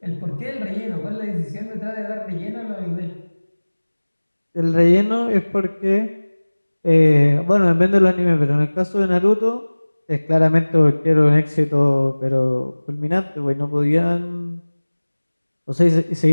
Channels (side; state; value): both; inverted; correlation -1.00